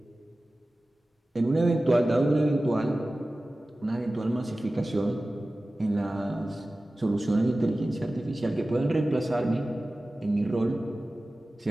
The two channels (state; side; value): normal; both; correlation 0.96